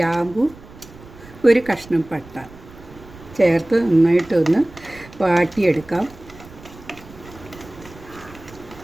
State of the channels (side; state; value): right; noise; rumble, 20 dB below the sound